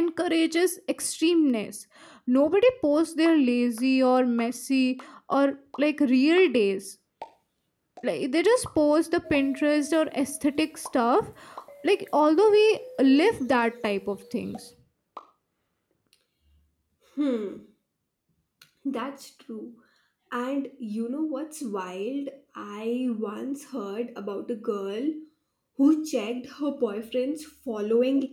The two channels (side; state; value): both; identical; correlation 1.00